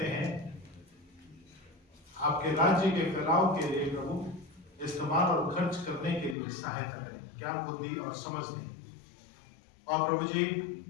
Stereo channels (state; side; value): drops out; right; at 6.4 s